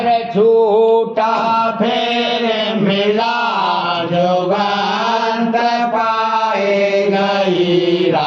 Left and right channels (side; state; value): both; identical; correlation 1.00